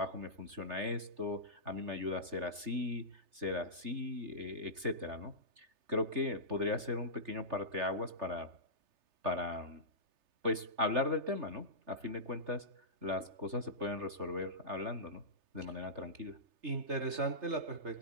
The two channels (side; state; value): left; late; 3.3 ms